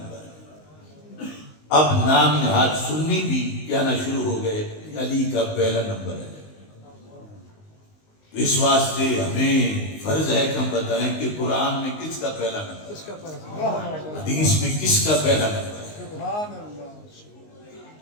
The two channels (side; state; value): right; late; 19 ms